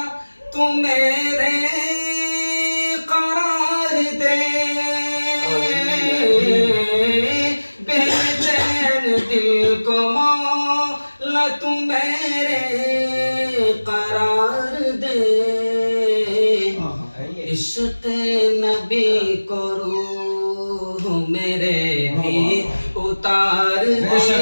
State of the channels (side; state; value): both; inverted; correlation -1.00